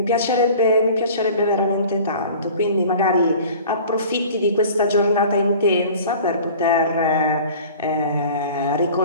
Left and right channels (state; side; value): inverted; both; correlation -0.44